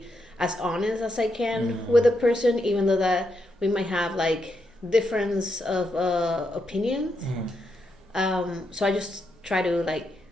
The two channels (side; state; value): both; normal; correlation 0.82